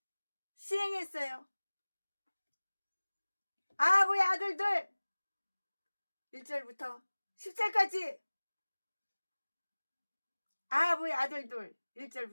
시행했어요. 아합의 아들들 1절부터 10절까지 아합의 아들들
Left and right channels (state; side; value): inverted; both; correlation -1.00